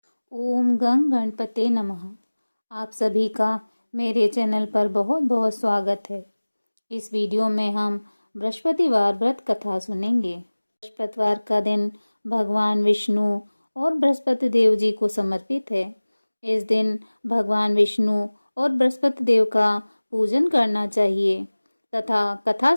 ओम गं गणपते नमः। आप सभी का मेरे चैनल पर बहुत बहुत स्वागत है। इस वीडियो में हम बृहस्पतिवार व्रत कथा सुनेंगे। बृहस्पतिवार का दिन भगवान विष्णु और बृहस्पति देव जी को समर्पित है। इस दिन भगवान विष्णु और बृहस्पति देव का पूजन करना चाहिए तथा कथा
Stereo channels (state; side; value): inverted; both; correlation -1.00